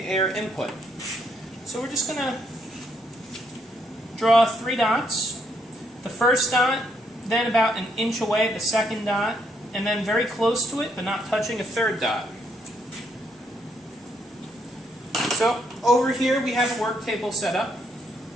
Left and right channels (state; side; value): normal; both; correlation 0.74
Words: input. So we're just going to draw 3 dots. The first dot then about an inch away, the second dot, and then very close to it, but not touching a third dot. So over here we have a work table set up.